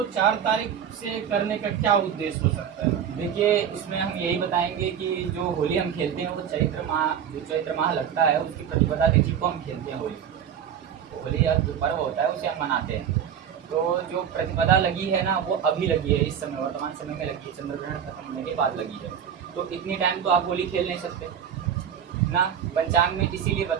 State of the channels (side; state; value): left; quieter; 8.6 dB